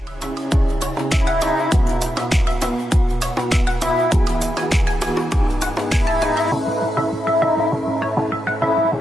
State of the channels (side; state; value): both; normal; correlation 0.87